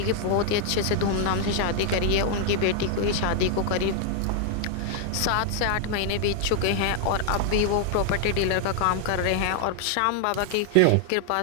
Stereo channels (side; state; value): both; different; correlation 0.00